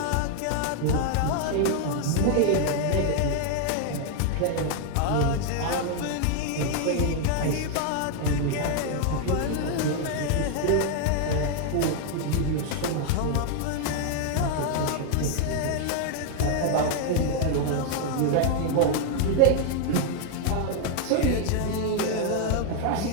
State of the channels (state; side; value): different; both; correlation 0.00